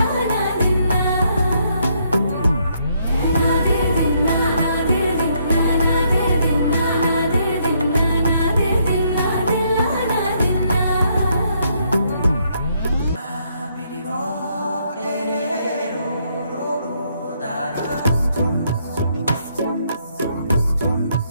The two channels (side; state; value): both; inverted; correlation -0.72